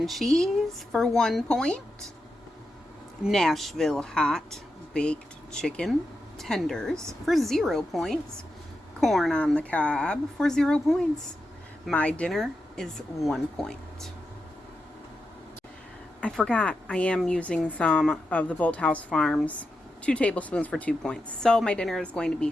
cheese for 1 point. Nashville hot baked chicken tenders for 0 points. Corn on the cob for 0 points. My dinner is 1 point. I forgot I am using some of the Bolthouse Farms 2 tablespoons for 2 points. So my dinner is going to be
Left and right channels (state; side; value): normal; both; correlation 0.88